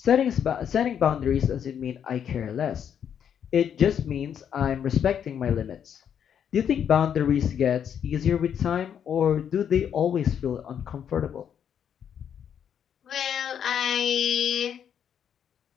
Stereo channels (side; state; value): right; quieter; 8.6 dB